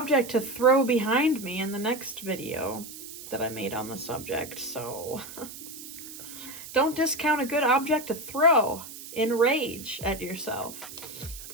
to throw behind me in the next video that I made on the subject, so don't discount a good object to throw in rage at yourself.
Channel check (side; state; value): right; noise; hiss, 13 dB below the sound